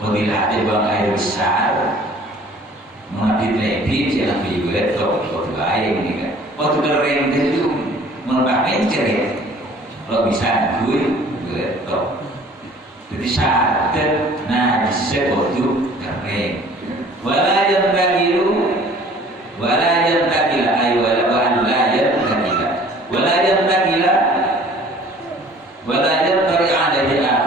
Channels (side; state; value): both; normal; correlation 0.51